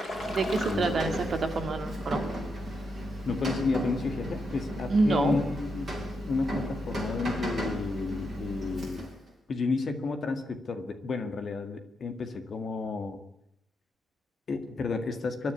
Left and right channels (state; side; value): normal; both; correlation 0.82